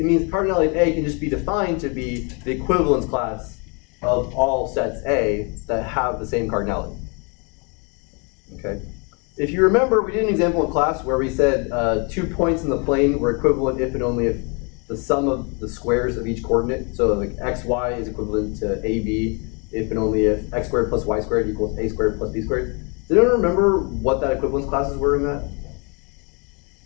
means cardinality of A can just be defined to be the equivalence class of all sets A that have the same cardinality. Okay? If you remember, we did an example in class where we said 2 points in the plane were equivalent if and only if the sum of the squares of each coordinate, so like xy is equivalent to ab if and only if x squared plus y squared equals a squared plus b squared. Does anyone remember what that equivalence classes were in that?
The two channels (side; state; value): right; quieter; 32.8 dB